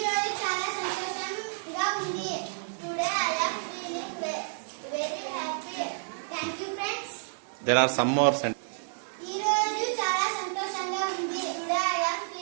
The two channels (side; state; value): left; silent; digital silence